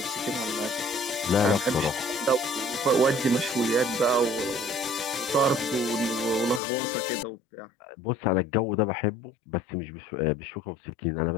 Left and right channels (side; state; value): right; drops out; at 6.6 s